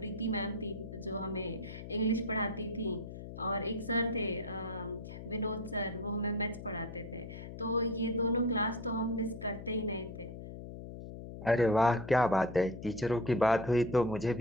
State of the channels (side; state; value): left; noise; hum, 11 dB below the sound